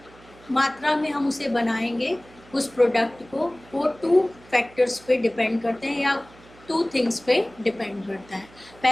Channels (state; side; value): noise; right; hum, 24 dB below the sound